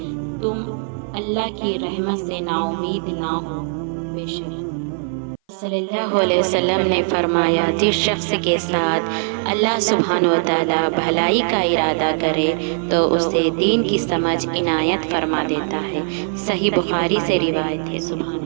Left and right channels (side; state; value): left; silent; 58 dB below the other